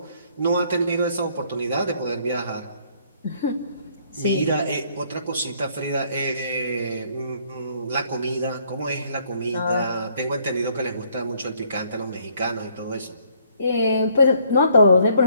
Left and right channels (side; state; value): both; inverted; correlation -0.65